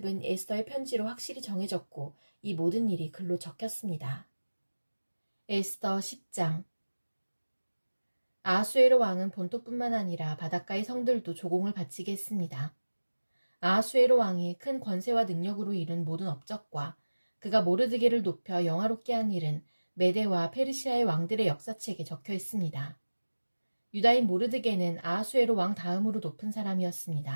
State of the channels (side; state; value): both; inverted; correlation -1.00